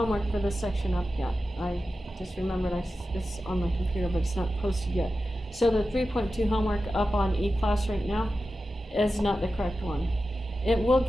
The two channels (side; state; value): both; normal; correlation 0.93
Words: for this section up yet. I just remembered it's on my computer, but it's not posted yet. So the 3.2 homework up on eClass right now is not the correct one. It will